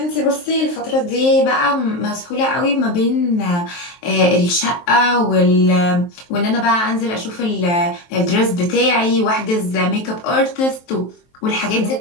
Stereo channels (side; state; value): right; late; 23 ms